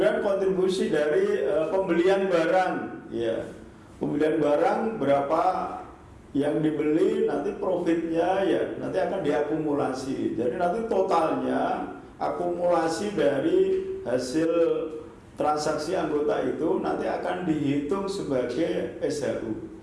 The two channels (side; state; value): both; identical; correlation 1.00